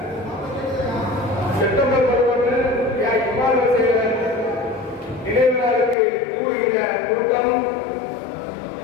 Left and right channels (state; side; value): drops out; right; at 6.0 s